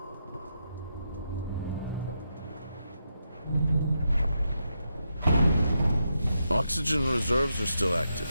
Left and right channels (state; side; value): inverted; both; correlation -0.84